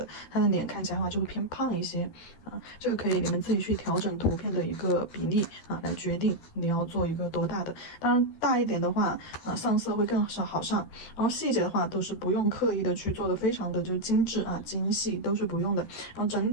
它的脸看起来的话就会偏胖一些啊。这个可以你们自己去调整图片的一个比例啊，来决定你要做一个多大的。当然大一点的话，上色会更好上，然后细节的话都是不用刻意的去做的非常的就精致啊精细，都是不用的。然后整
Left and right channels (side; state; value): right; late; 13 ms